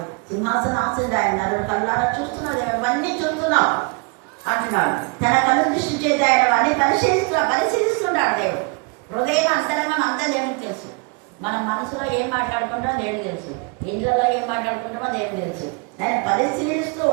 సింహాసనాసీనుడు ఆయన, కళ్ళారా చూస్తున్నాడు, అవన్నీ చూస్తున్నావు అంటున్నాడు. తన కళ్ళు దృష్టి చేసి ఆయన అన్ని పరిశీలిస్తున్నాడు దేవుడు. హృదయం అంతరంగం అంతా దేవుడికి తెలుసు. మనం మనసులో ఏం మాట్లాడుకుంటామో దేవుడికి తెలుసు, ఇండ్లలో ఏం మాట్లాడుకుంటామో దేవుడికి తెలుసు. ఆయన పరిశీలిస్తూ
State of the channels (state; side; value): quieter; left; 31.9 dB